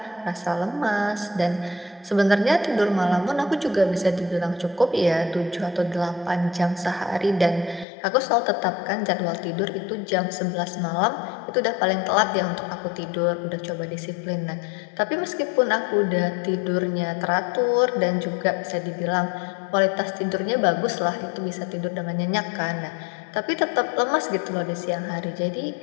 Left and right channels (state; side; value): drops out; right; at 7.9 s